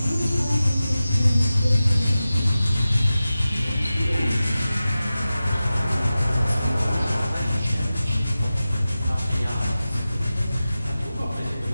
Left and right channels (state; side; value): inverted; both; correlation -0.95